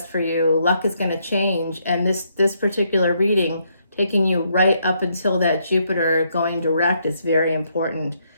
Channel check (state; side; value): inverted; both; correlation -0.74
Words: for you. Luck is going to change. And this particular reading, taking you right up until that Jupiter going direct, is very important.